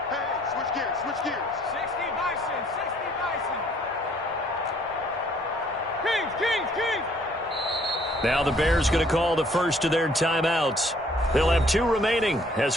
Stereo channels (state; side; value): normal; both; correlation 0.61